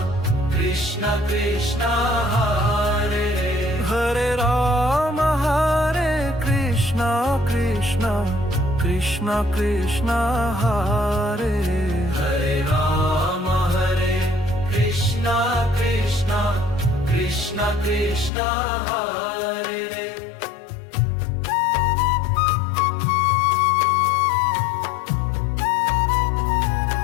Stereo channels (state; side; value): drops out; right; at 18.3 s